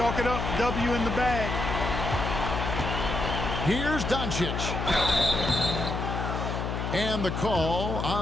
it up. W in the bag. Here's Doncic. And the call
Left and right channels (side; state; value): left; noise; hum, 3 dB below the sound